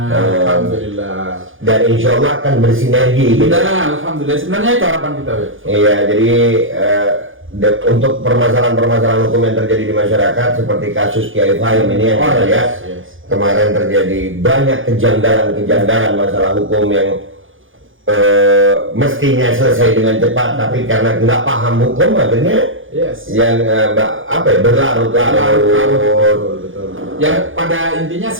Alhamdulillah. Dan insya Allah akan bersinergi gitu. Nah, alhamdulillah. Sebenarnya itu harapan kita ya. Iya, jadi untuk permasalahan-permasalahan hukum yang terjadi di masyarakat seperti kasus Kiai Fahim ini yang kita lihat kemarin terjadi banyak kejanggalan masalah hukum yang mestinya selesai dengan cepat, tapi karena nggak paham hukum akhirnya yang berlarut-larut. Betul. Yang pada intinya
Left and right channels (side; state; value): left; late; 0.58 ms